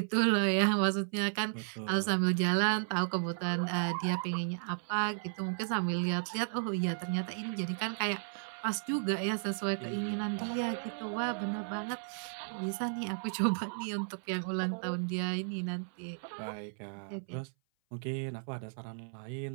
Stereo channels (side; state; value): left; silent; 55 dB below the other